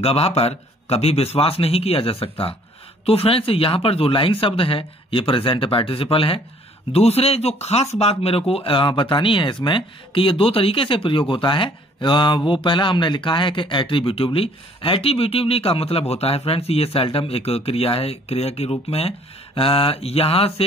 पर कभी विश्वास नहीं किया जा सकता। तो फ्रेंड्स यहां पर जो लाइंग शब्द है ये प्रेजेंट पार्टिसिपल है। दूसरे जो खास बात मेरे को बतानी है इसमें कि ये दो तरीके से प्रयोग होता है। वो पहला हमने लिखा है कि एट्रीब्यूटिवली। एट्रीब्यूटिवली का मतलब होता है फ्रेंड्स ये सेल्डम एक क्रिया है, क्रिया के रूप में है। यहां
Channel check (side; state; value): both; normal; correlation 0.59